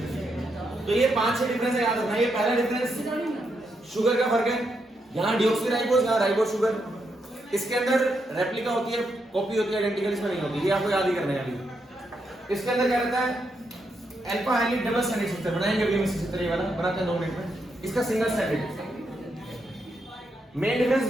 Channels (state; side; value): normal; both; correlation 0.81